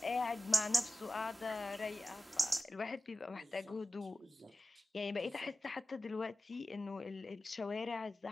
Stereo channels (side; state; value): both; normal; correlation 0.96